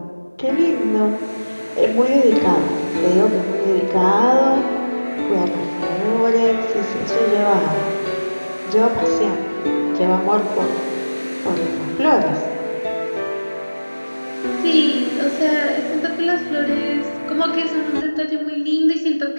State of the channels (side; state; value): both; inverted; correlation -1.00